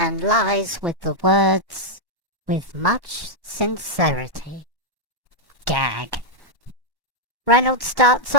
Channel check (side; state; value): left; late; 1.1 ms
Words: lies with the words, "with much sincerity." Gag. Reynolds starts